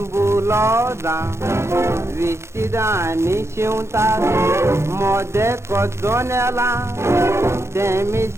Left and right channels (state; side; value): late; left; 0.13 ms